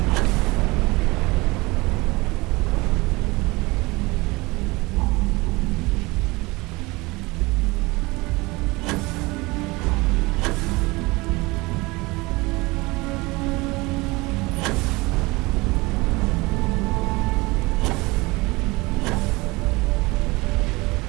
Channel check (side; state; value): left; quieter; 23.3 dB